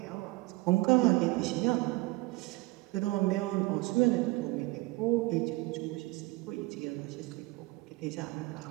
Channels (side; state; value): left; quieter; 21.5 dB